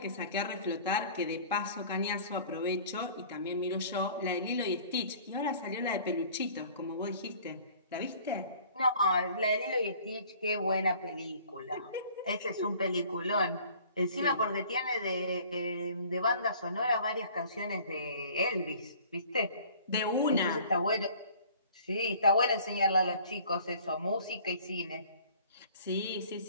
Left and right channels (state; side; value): inverted; both; correlation -0.51